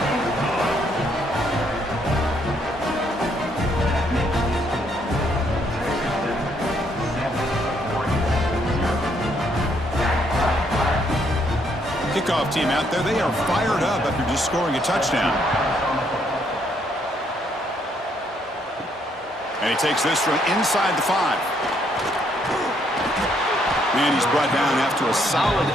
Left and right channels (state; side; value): normal; both; correlation 0.71